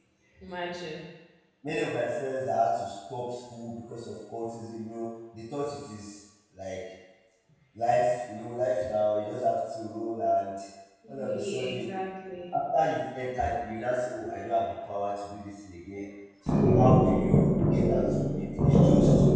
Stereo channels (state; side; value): identical; both; correlation 1.00